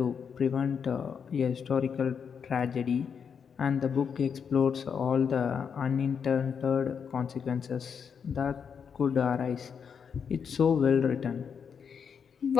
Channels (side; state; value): right; quieter; 6.8 dB